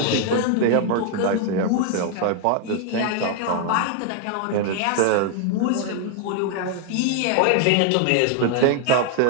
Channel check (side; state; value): both; different; correlation 0.00